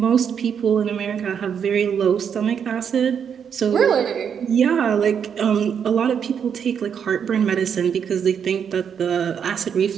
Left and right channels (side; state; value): left; quieter; 7.6 dB